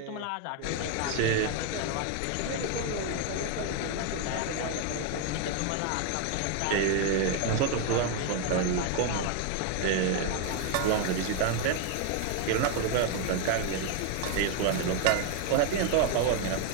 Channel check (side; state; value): both; different; correlation 0.01